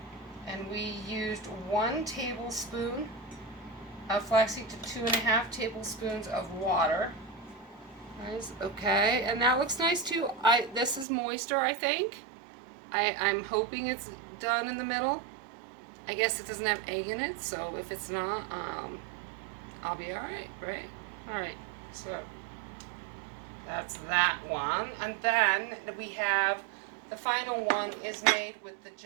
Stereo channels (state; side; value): drops out; left; at 11.1 s